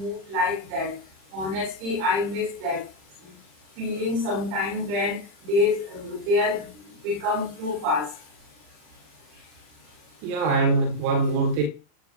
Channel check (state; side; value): late; left; 40 ms